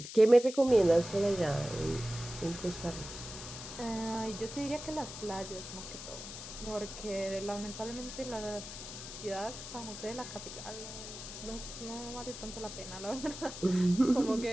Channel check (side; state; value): left; noise; hiss, 10 dB below the sound